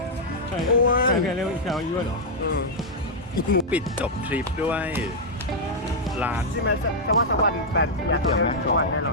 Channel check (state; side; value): normal; both; correlation -0.05